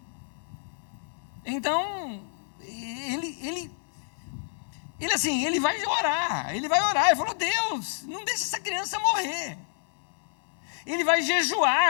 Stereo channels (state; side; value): silent; right; 59 dB below the other